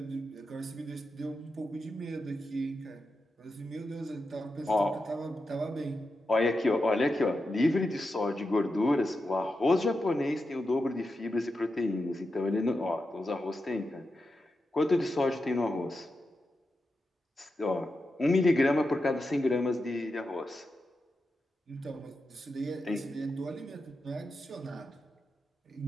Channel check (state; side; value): normal; both; correlation 0.89